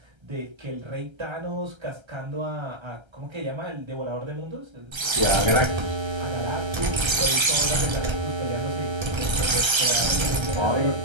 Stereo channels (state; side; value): late; left; 1.3 ms